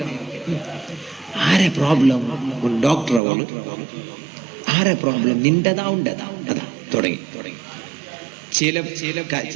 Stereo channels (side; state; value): left; drops out; at 3.2 s